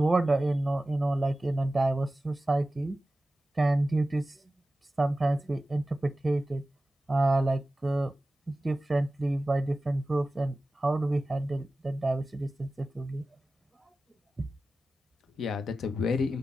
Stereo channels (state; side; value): normal; both; correlation 0.95